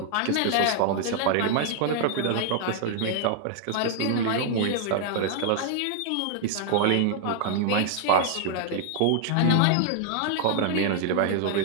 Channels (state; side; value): different; both; correlation -0.01